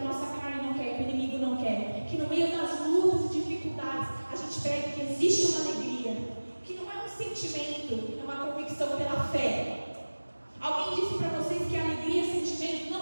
gente prega que existe uma alegria, que não é um sentimento, é uma convicção pela fé. Alguém disse para vocês que alegria é sentimento?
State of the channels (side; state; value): both; inverted; correlation -1.00